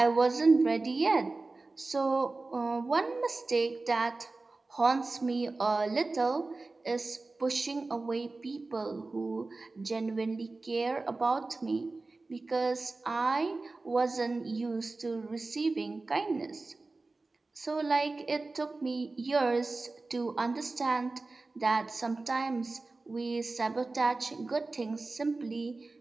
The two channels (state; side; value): quieter; left; 3.5 dB